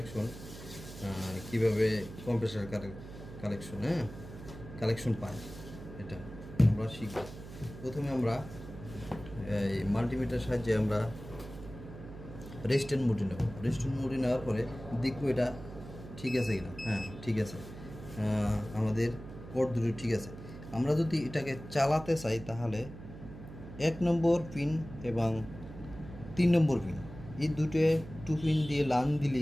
কীভাবে কম্প্রেসার কালেকশন কালেকশন পায়, এটা আমরা শিখব। প্রথমে আমরা এই মাল্টিমিটারের সাহায্যে আমরা রেজিস্ট্যান্ট মোডে নেব। রেজিস্ট্যান্ট মোডে নেওয়ার পরে দেখব এটা ঠিক আছে কিনা। হ্যাঁ, ঠিক আছে, আমাদের কোড দুটো ঠিক আছে। আমরা যদি এটাকে চালাতে চাই তাহলে 1 নম্বর পিন এবং 3 নম্বর পিন, এই দুটো 2 পিন দিয়ে লাইন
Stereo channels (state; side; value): noise; right; hum, 13 dB below the sound